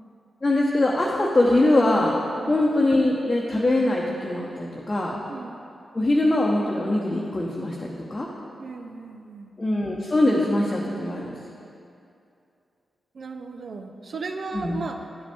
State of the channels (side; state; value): both; normal; correlation 0.93